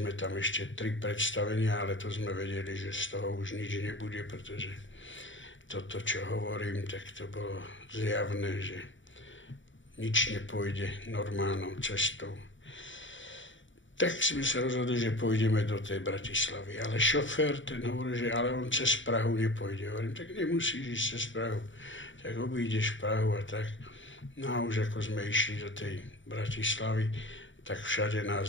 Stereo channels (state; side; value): late; right; 0.55 ms